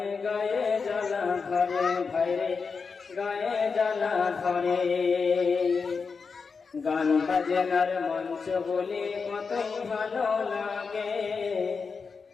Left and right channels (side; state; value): right; quieter; 5.1 dB